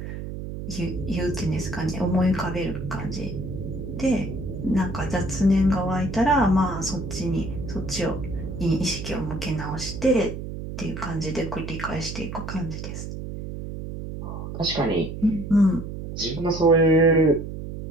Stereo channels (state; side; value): noise; right; hum, 8 dB below the sound